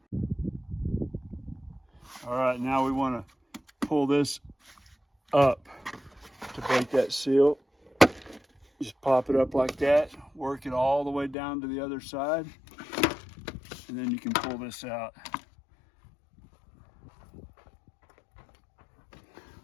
All right, now we want to pull this up to break that seal. Just pop it up like that, work it all the way down to the other side, and then you can pull this out.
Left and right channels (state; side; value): drops out; right; at 11.4 s